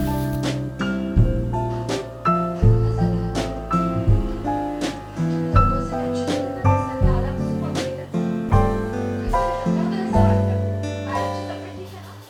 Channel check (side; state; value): both; identical; correlation 1.00